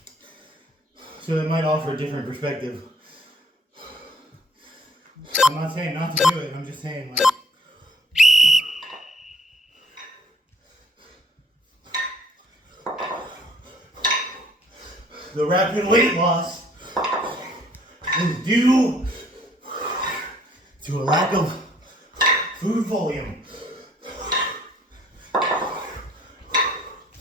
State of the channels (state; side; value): normal; both; correlation 0.60